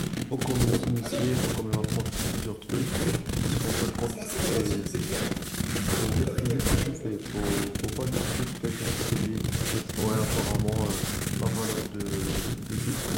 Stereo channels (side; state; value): both; identical; correlation 1.00